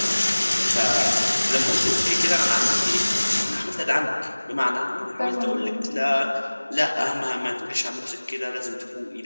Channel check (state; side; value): inverted; both; correlation -1.00